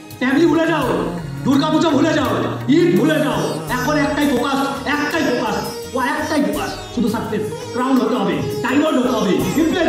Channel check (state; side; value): identical; both; correlation 1.00